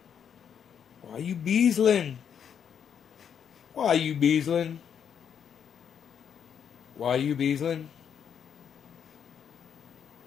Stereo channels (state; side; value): quieter; right; 8.0 dB